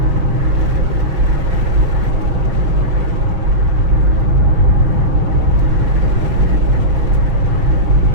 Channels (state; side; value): late; left; 6.7 ms